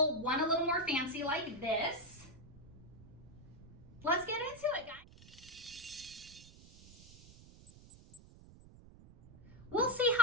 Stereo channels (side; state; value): right; noise; rumble, 19 dB below the sound